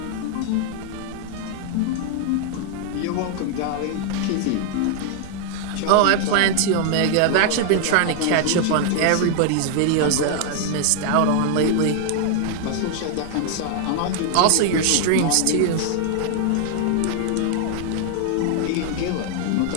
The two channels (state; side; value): different; both; correlation 0.00